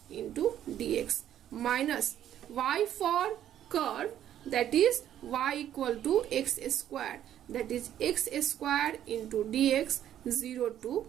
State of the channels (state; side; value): quieter; left; 11.0 dB